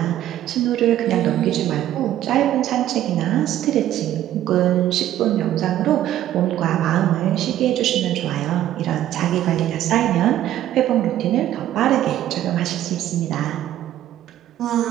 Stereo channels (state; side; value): quieter; left; 12.6 dB